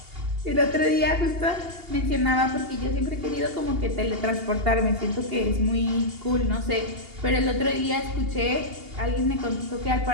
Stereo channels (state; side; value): late; left; 2.8 ms